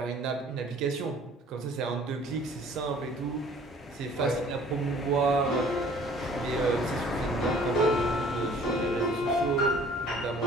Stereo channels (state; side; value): normal; both; correlation 0.53